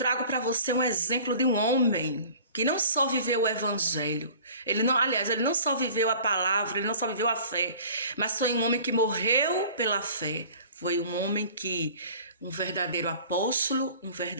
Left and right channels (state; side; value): inverted; both; correlation -0.46